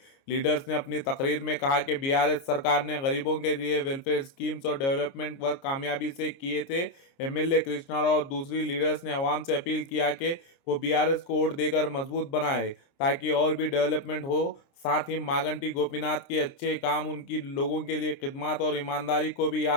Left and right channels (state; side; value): late; right; 29 ms